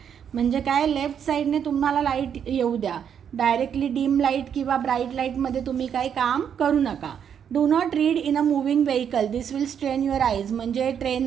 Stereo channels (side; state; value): left; quieter; 8.2 dB